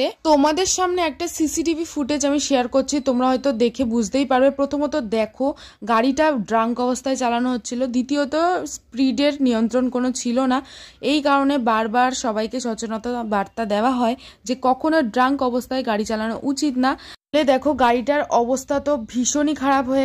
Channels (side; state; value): both; identical; correlation 1.00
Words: তোমাদের সামনে একটা সিসিটিভি ফুটেজ আমি শেয়ার করছি, তোমরা হয়তো দেখে বুঝতেই পারবে। প্রথমত দেখো গাড়িটা ড্রাঙ্ক অবস্থায় চালানো হচ্ছিল, দ্বিতীয়ত স্পিডের নিয়ন্ত্রণ কোনো ছিল না। এই কারণে বারবার সবাইকে সচেতনতা বার্তা দেওয়া হয় যে কখনো ড্রাঙ্ক অবস্থায় গাড়ি চালানো উচিত না। দেখো গাড়িটার অবস্থা তো ভীষণই খারাপ